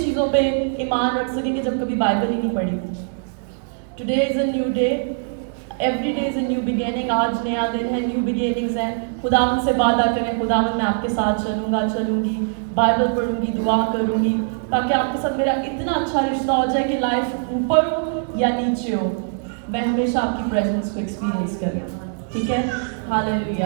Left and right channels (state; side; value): silent; left; digital silence